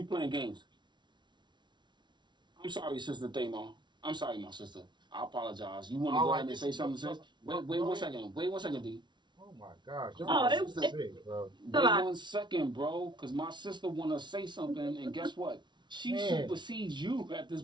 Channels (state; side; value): late; left; 0.22 ms